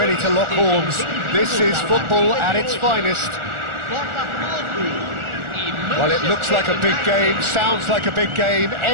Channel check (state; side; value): late; left; 1.4 ms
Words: to lock horns. This is football at its finest. Well, it looks like a big game, sounds like a big game.